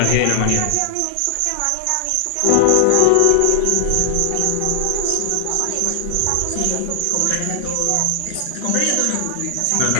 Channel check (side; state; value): both; different; correlation 0.00